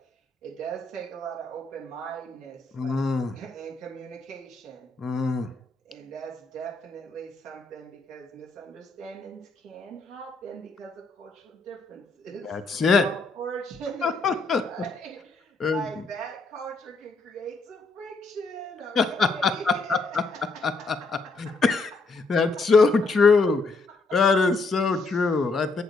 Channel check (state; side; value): quieter; right; 3.5 dB